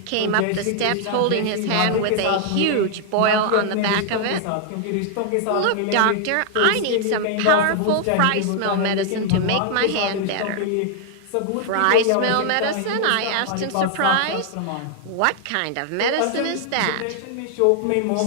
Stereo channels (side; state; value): both; different; correlation 0.00